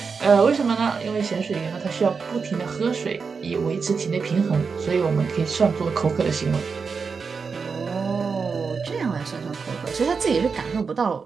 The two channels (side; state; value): left; quieter; 5.3 dB